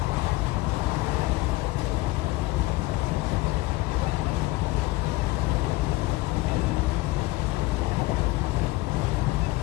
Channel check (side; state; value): right; quieter; 19.9 dB